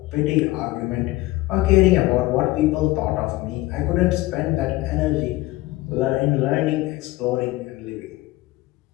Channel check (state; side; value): quieter; right; 19.0 dB